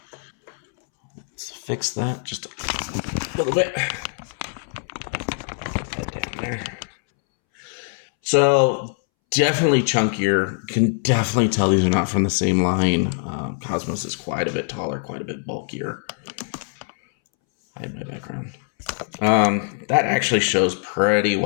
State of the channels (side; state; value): right; silent; 64 dB below the other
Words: Let's fix that just a little bit. Put that down there. So, definitely chunkier. Can definitely tell these are not from the same line. Cosmos is quite a bit taller, quite a bit bulkier. Hide my background. That actually shows pretty